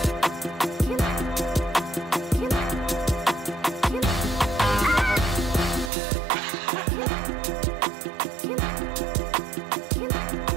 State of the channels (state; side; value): drops out; left; at 5.9 s